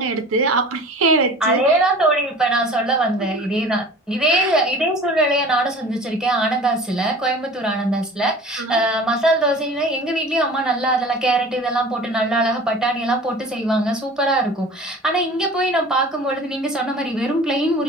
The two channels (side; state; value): both; normal; correlation 0.41